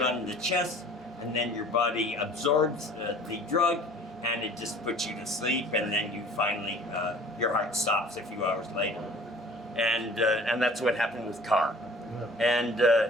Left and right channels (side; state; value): both; normal; correlation 0.48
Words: on the chest, and then your body absorbs the drug, and it just puts you to sleep, and then you finally, your heart stops a few hours later. And that's what happened with Carr. And